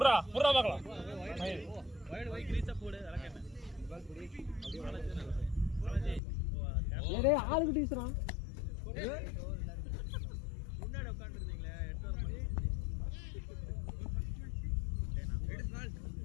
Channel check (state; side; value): drops out; right; at 6.2 s